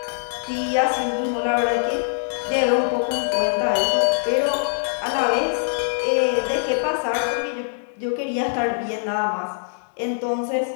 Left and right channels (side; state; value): right; silent; digital silence